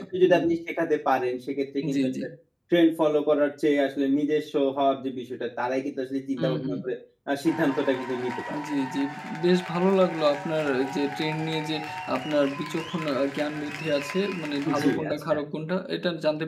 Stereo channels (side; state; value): both; identical; correlation 1.00